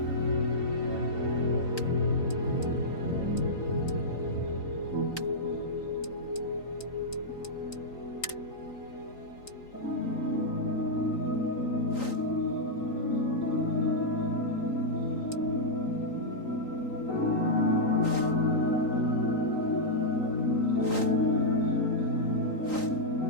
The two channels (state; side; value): late; right; 3.9 ms